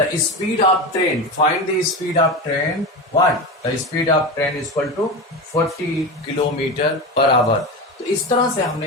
speed of train, find the speed of train, what? The speed of train is equal to 40 kilometre per hour. तो इस तरह से हमने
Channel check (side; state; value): both; normal; correlation 0.23